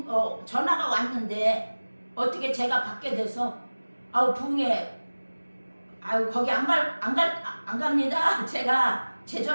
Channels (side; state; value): both; inverted; correlation -1.00